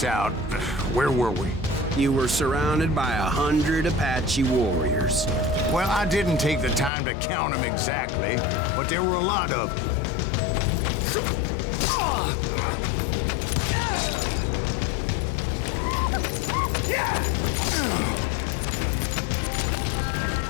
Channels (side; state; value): right; drops out; at 6.9 s